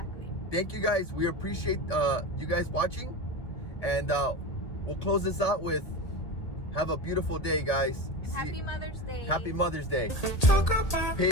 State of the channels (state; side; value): late; right; 1.8 ms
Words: Thank you, guys. We appreciate you guys watching, and we'll close this out with have a beautiful day, guys. Happy Mother's Day. Happy Mother's Day. Talk about